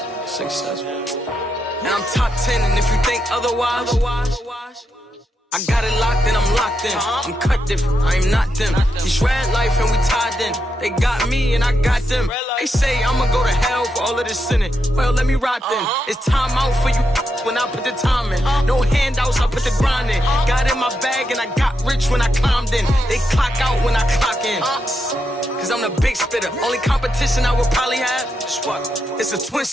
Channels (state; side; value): normal; both; correlation 0.83